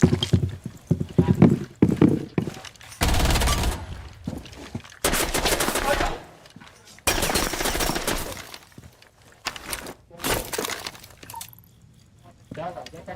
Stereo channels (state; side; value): identical; both; correlation 1.00